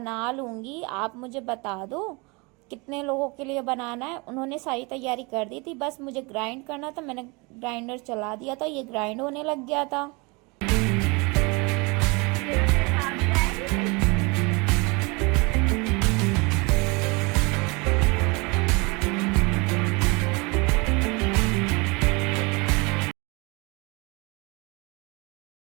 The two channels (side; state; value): left; quieter; 27.9 dB